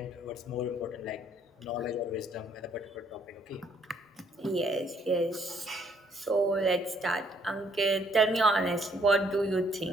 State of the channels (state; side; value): normal; both; correlation 0.67